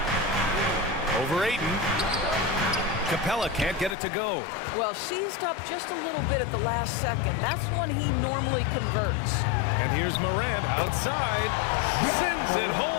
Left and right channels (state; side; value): drops out; right; at 4.0 s